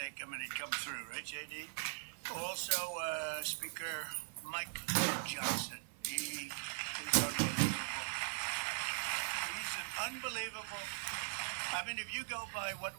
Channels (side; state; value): left; silent; digital silence